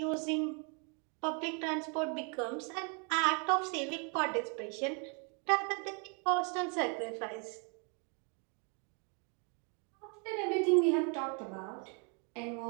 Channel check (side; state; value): left; quieter; 36.4 dB